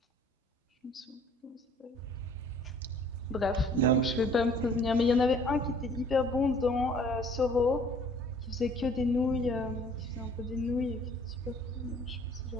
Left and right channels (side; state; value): both; normal; correlation 0.55